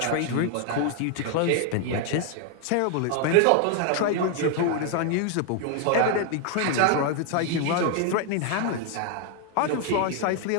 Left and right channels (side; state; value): both; different; correlation 0.00